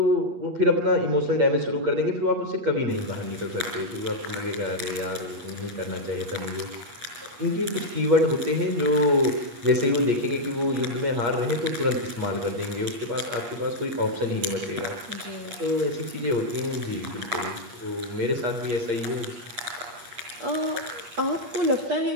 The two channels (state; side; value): late; left; 8.4 ms